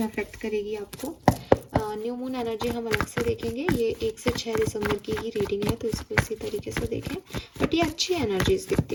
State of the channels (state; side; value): identical; both; correlation 1.00